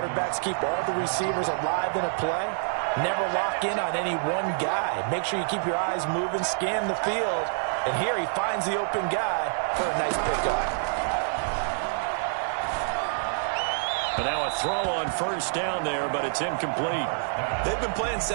keep all the receivers alive in a play, never lock in on any one guy. Make sure you keep your eyes moving, scan the field. And here he finds the open guy for a nice pickup. And now a throw on first down there, but it's incomplete. They've been playing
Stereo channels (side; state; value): left; silent; 58 dB below the other